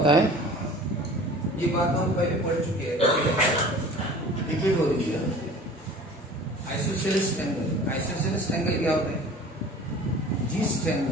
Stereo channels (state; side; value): normal; both; correlation 0.43